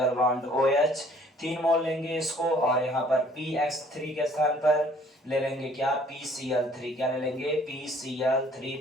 bond OH 3 मोल लेंगे इसको, और यहाँ पर PX3 के स्थान पर ले लेंगे क्या PCl3। क्या ले लेंगे? PCl3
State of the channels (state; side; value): normal; both; correlation 0.58